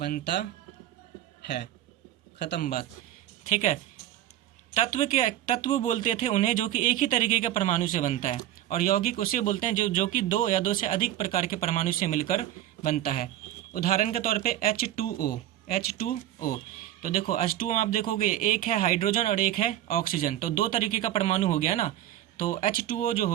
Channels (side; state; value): left; quieter; 12.9 dB